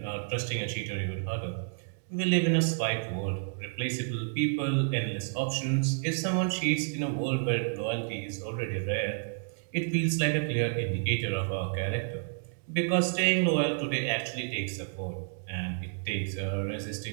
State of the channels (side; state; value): left; silent; digital silence